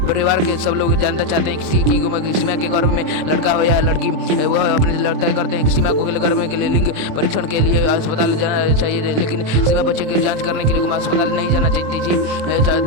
परिवार के सब लोग जानना चाहते हैं कि सीमा के गर्भ में लड़का हो या लड़की। वह अपने लड़का करते हैं कि सीमा को गर्भ के लिए लिंग परीक्षण के लिए अस्पताल जाना चाहिए, लेकिन सीमा बच्चे की जांच करने के लिए अस्पताल नहीं जाना चाहती थी।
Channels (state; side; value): late; left; 27 ms